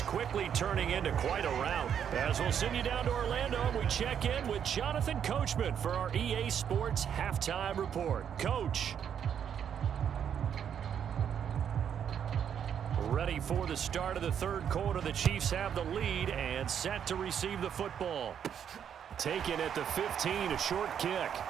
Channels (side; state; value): left; quieter; 8.5 dB